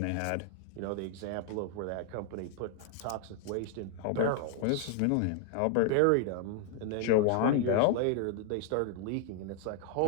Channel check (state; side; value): different; both; correlation 0.00